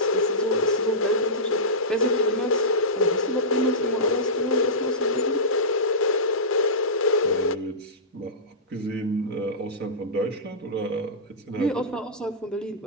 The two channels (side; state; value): both; normal; correlation -0.16